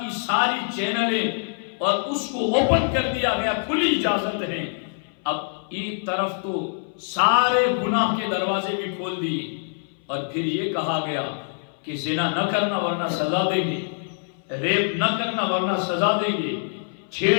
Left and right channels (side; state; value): right; silent; 60 dB below the other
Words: ساری چینلیں، اور اس کو اوپن کر دیا گیا، کھلی اجازت ہے۔ اب ایک طرف تو سارے گناہ کے دروازے بھی کھول دیے، اور پھر یہ کہا گیا کہ زنا نہ کرنا ورنہ سزا دیں گے، ریپ نہ کرنا ورنہ سزا دیں گے، چھیڑ